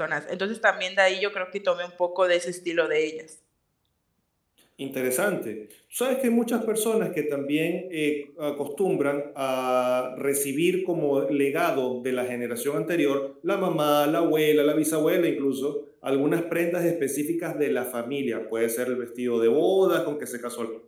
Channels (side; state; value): both; identical; correlation 1.00